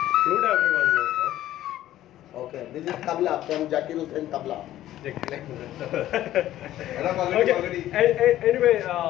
Flute everyone knows, huh? Okay, this is tabla from Zakir Hussain tabla. Okay. Anyway,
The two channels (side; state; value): right; quieter; 13.5 dB